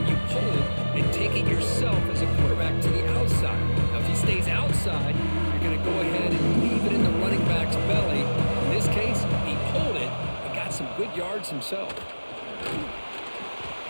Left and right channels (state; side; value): inverted; both; correlation -1.00